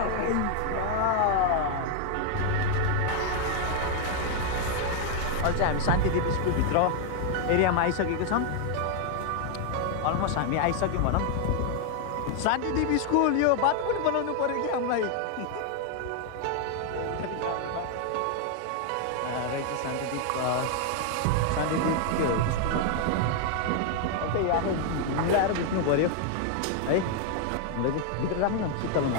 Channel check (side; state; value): both; different; correlation 0.00